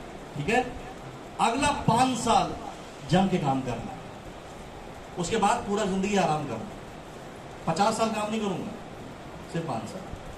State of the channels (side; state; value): both; identical; correlation 1.00